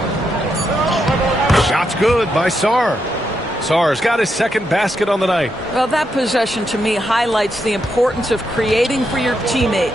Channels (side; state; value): both; normal; correlation 0.82